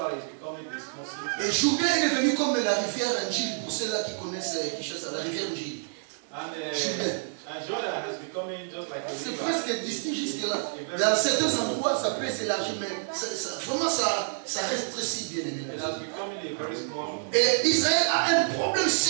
it's becoming this Muslim. Et Jourdain est devenu comme la rivière Njil, pour ceux-là qui connaissent Kinshasa, la rivière Njil. And Jordan has become just like a c'est river. presque distinct jusque-là. Dans certains endroits, ça peut s'élargir, mais vraiment ça rétrécit, bien évidemment. It has become a very small. Et Israël a un problème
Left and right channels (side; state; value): left; silent; digital silence